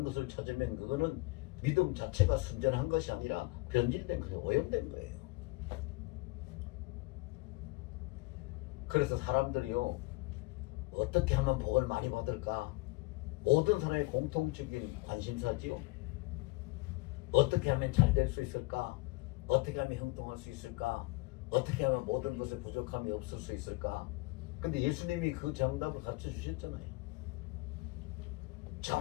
것을 찾으면 그거는 믿음 자체가 순전한 것이 아니라 변질된 그냥 오염된 거예요. 그래서 사람들이요 어떻게 하면 복을 많이 받을까? 모든 사람의 공통적인 관심사지요. 어떻게 하면 잘 될 수 있을까? 어떻게 하면 형통할 수 있을까? 어떻게 하면 모든 것에 부족함이 없을 수 있을까? 근데 예수님이 그 정답을 가르쳐 주셨잖아요.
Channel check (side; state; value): right; quieter; 24.1 dB